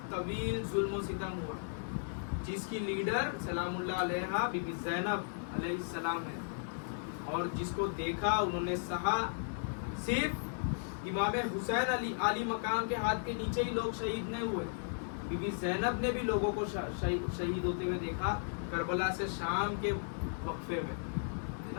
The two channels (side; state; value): right; silent; digital silence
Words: طویل ظلم و ستم ہوا, جس کی لیڈر سلام اللہ علیہا بی بی زینب علیہ السلام ہے, اور جس کو دیکھا انہوں نے سہا. صرف امام حسین علی مقام کے ہاتھ کے نیچے ہی لوگ شہید نہیں ہوئے, بی بی زینب نے بھی لوگوں کو شہید ہوتے ہوئے دیکھا کربلا سے شام کے وقفے میں, ہے